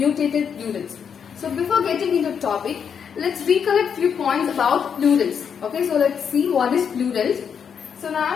plurals. So before getting into the topic, let's recollect few points about plurals. Okay, so let's see what is plurals. So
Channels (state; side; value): quieter; right; 7.2 dB